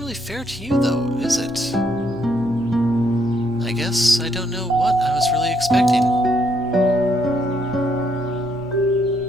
fair to you though, is it? I guess I don't know what I was really expecting.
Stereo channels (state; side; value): normal; both; correlation 0.73